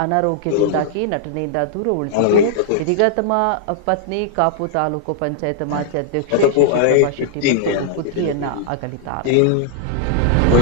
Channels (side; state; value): both; different; correlation -0.01